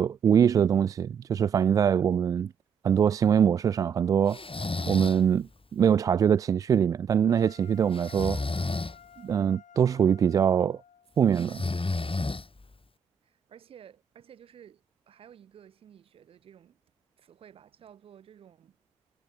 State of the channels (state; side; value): quieter; left; 7.0 dB